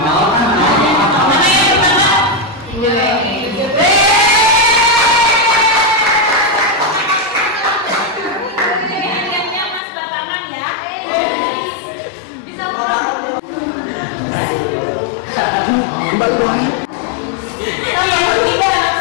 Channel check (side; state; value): right; drops out; at 9.8 s